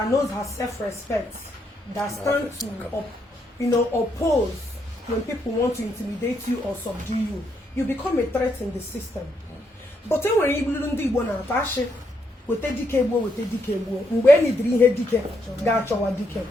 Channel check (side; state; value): both; normal; correlation 0.77